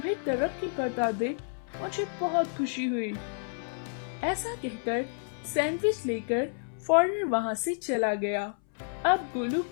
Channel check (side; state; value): right; silent; 58 dB below the other